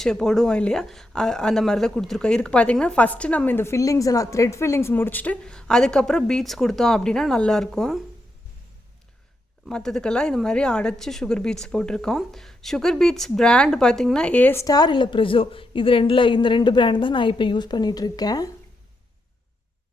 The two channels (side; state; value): both; normal; correlation 0.83